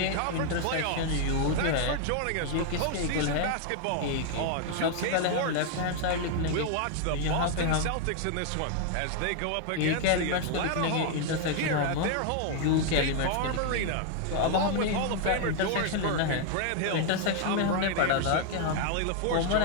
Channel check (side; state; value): both; different; correlation 0.00